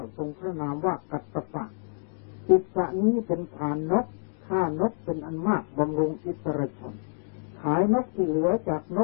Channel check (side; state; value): right; silent; digital silence